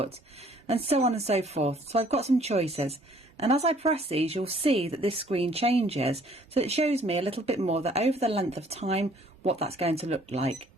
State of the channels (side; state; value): both; normal; correlation 0.59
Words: and so on and so forth. So I've got some choices, and as I press these, you'll see that this screen changes, so it shows me a little bit more that over the length of time what that's going to look like.